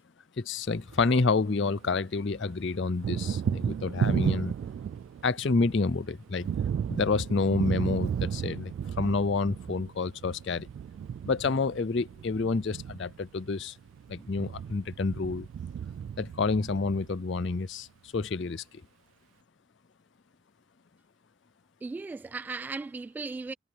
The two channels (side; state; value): both; normal; correlation 0.43